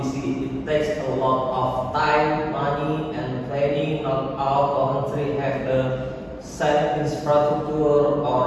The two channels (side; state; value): both; identical; correlation 1.00